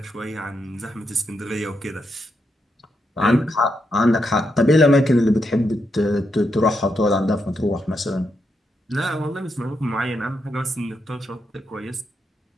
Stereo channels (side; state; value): both; normal; correlation 0.82